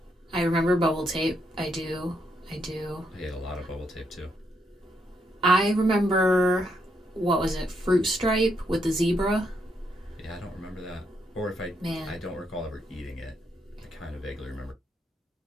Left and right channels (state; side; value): normal; both; correlation 0.77